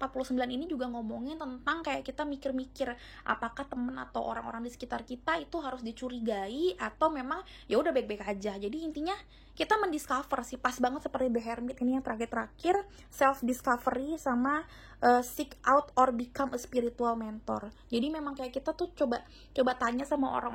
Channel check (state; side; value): identical; both; correlation 1.00